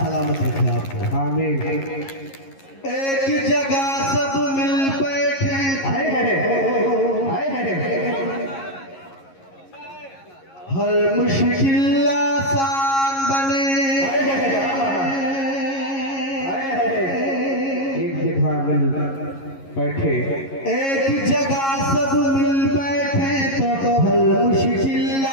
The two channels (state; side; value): late; right; 11 ms